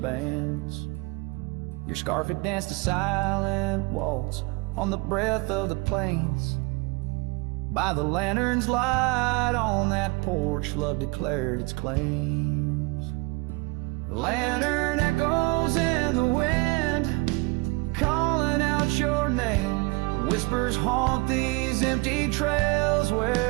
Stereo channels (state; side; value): quieter; left; 26.1 dB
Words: bands. Your scarf had danced a silent waltz on the breath of the plains. By the lantern's light on that porch, love declared its claims. Lantern echoes in the wind, calling out your name. Whispers haunt these empty trails